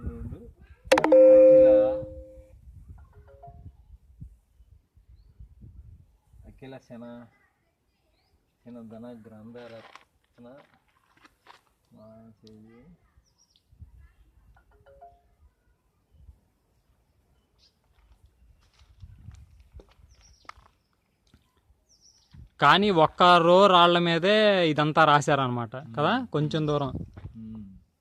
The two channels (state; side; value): identical; both; correlation 1.00